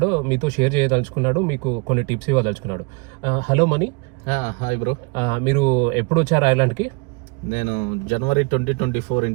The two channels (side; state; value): left; quieter; 30.4 dB